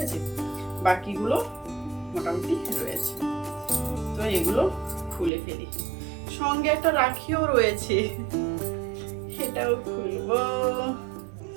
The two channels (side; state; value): left; drops out; at 5.3 s